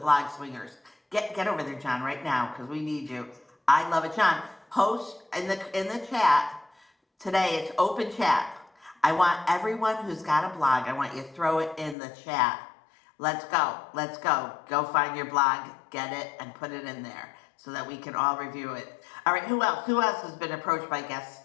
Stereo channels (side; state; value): right; drops out; at 12.0 s